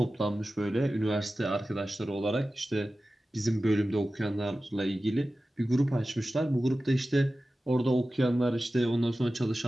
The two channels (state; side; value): normal; both; correlation 0.95